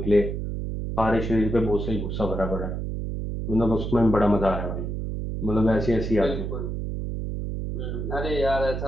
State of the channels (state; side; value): noise; right; hum, 4 dB below the sound